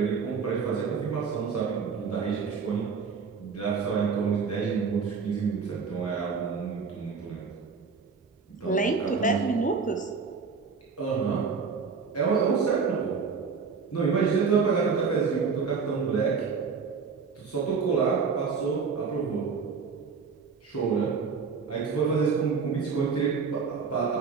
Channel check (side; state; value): left; quieter; 5.4 dB